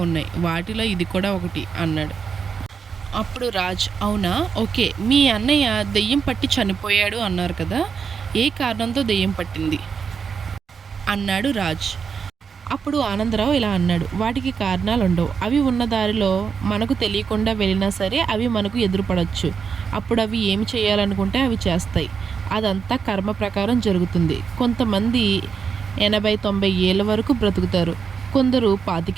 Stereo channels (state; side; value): quieter; left; 6.2 dB